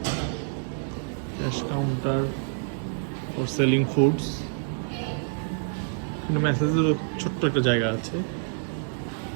Cash counter for selling foods. এখানে ম্যাসেজের ছোট্ট একটা জায়গা আছে।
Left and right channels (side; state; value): left; silent; digital silence